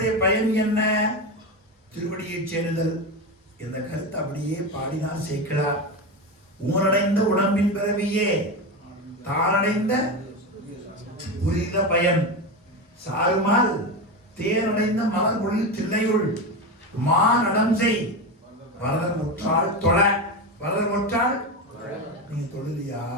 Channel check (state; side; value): normal; both; correlation 0.18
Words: பயன் என்ன? திருவடியை சேருதல். இந்த கருத்து அப்படியே பாடினார் சேக்கிழார். ஊரடைந்த உடம்பின் பிறவியே தானடைந்த புரித பயன் சாருமால் தேனடைந்த மலர் பொழில் தில்லையுள் மானடம் செய் வரதன் முற்றால் தொழ. வரதன் முற்றால் நீங்க தொழுதியா?